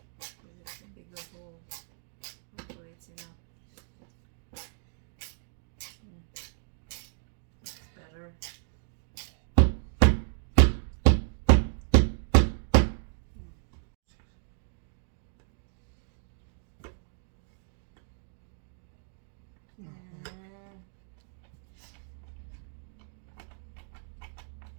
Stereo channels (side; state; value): left; silent; digital silence